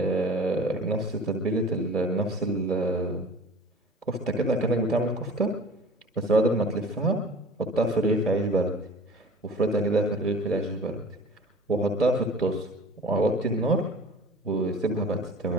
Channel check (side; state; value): both; normal; correlation 0.43